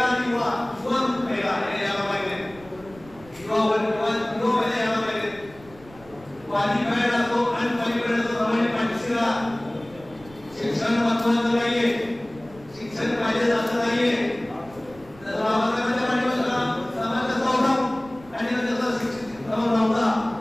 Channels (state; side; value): noise; right; rumble, 23 dB below the sound